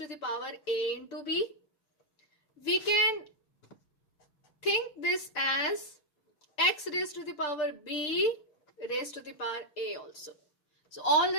the power a into b. We can think this as x raised to the power b raised to the power a also. So all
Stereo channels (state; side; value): late; right; 6.7 ms